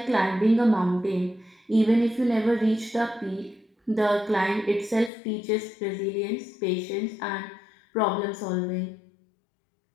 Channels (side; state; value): right; drops out; at 5.1 s